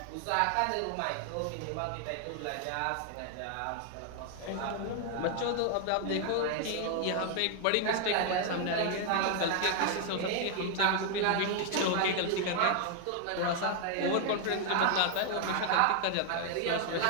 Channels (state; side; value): different; both; correlation 0.00